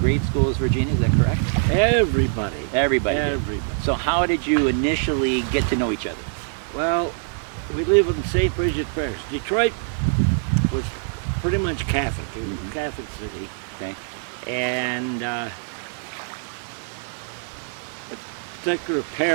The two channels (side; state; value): left; silent; digital silence